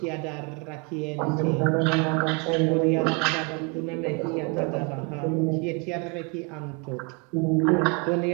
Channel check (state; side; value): quieter; left; 31.7 dB